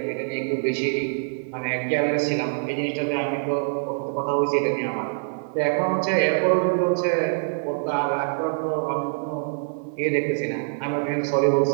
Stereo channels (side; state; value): left; silent; digital silence